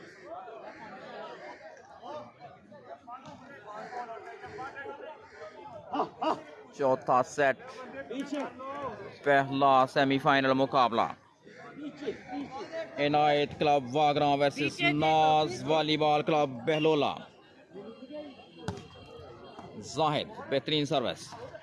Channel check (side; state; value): both; identical; correlation 1.00